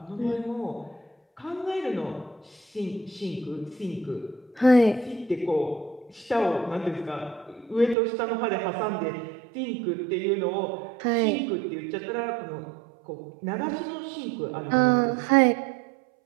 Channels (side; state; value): left; drops out; at 8.0 s